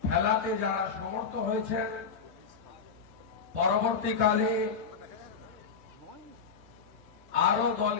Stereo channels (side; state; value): right; quieter; 5.7 dB